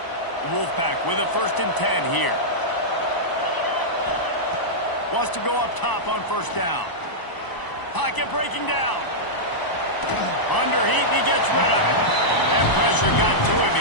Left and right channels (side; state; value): right; late; 1.0 ms